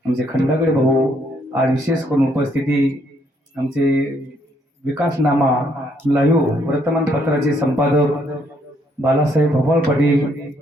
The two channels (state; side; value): normal; both; correlation 0.70